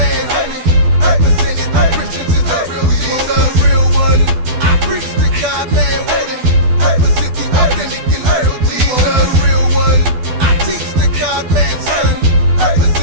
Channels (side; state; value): left; late; 12 ms